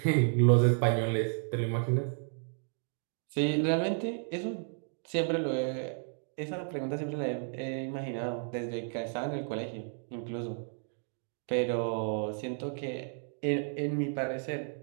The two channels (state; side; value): silent; left; 56 dB below the other